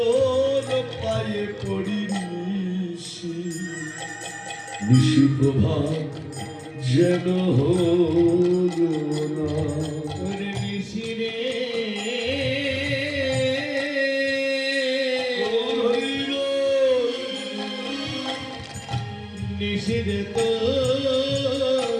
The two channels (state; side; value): identical; both; correlation 1.00